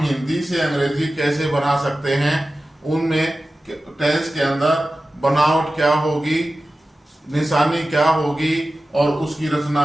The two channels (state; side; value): normal; both; correlation 0.95